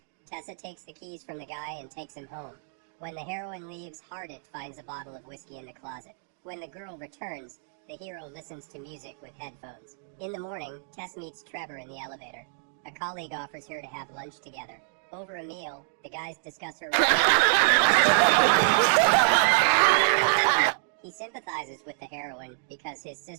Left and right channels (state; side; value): silent; left; digital silence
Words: Tessa takes the keys from the guy and takes him home. When the heroine leaves, Hardin finds a bottle of whiskey in the closet. When the girl returns, the hero listens to music with headphones. In the morning, Tess meets Trevor in the elevator. A colleague offers her to have lunch together. Over a meal, the guys discuss her. He sympathizes with the heroine because his